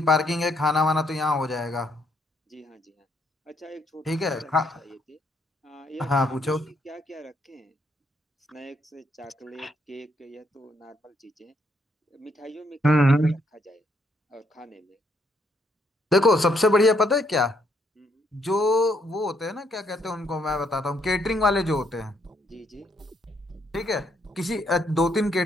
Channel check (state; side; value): normal; both; correlation 0.72